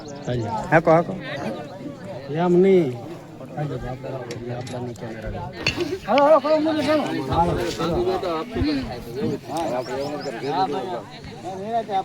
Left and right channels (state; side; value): identical; both; correlation 1.00